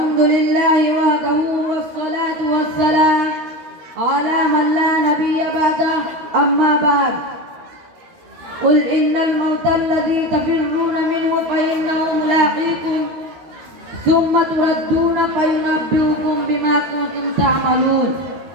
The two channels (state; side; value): late; left; 13 ms